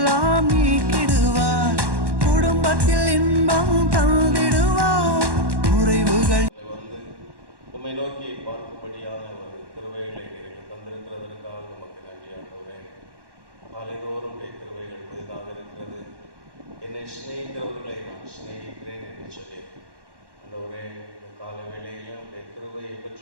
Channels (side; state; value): left; late; 1.1 ms